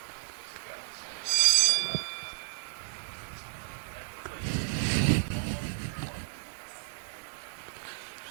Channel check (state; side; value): silent; left; digital silence